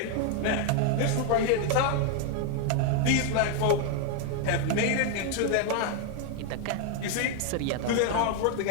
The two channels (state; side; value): different; both; correlation 0.00